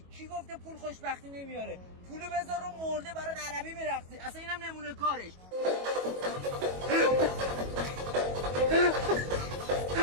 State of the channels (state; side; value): late; left; 22 ms